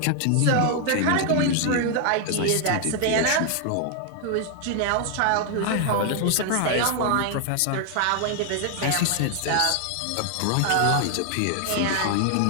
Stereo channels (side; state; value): both; different; correlation 0.00